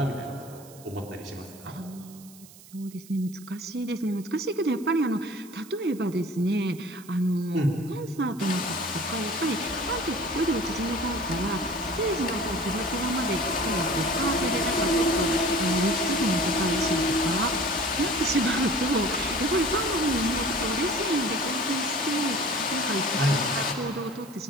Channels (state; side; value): noise; right; hiss, 21 dB below the sound